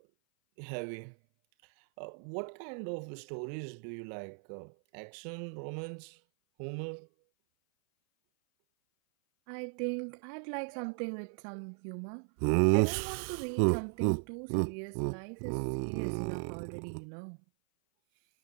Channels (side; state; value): left; silent; 53 dB below the other